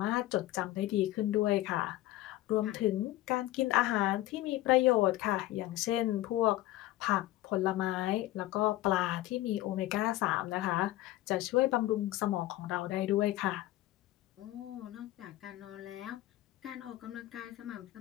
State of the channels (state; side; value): quieter; right; 16.0 dB